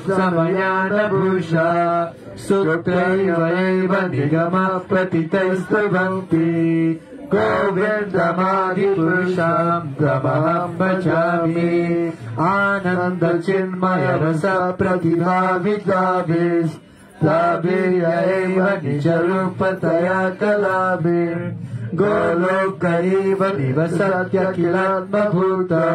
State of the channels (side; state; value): both; identical; correlation 1.00